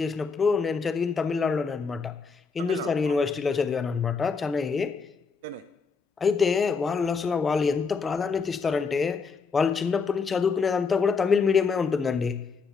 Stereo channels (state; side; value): quieter; right; 5.1 dB